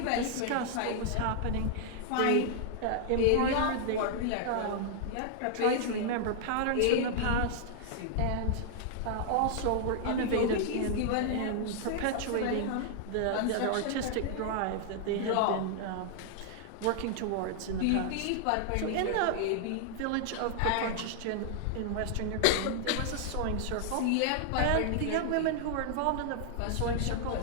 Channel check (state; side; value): different; both; correlation -0.01